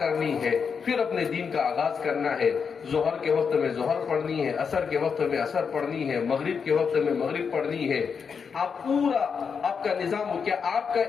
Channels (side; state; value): right; quieter; 6.1 dB